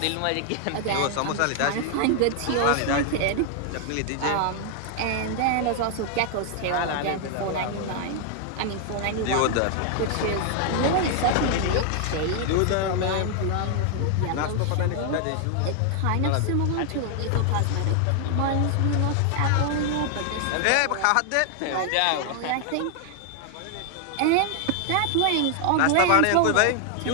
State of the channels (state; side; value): different; both; correlation 0.00